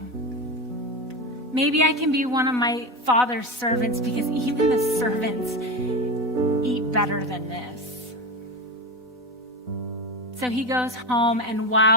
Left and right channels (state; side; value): normal; both; correlation 0.20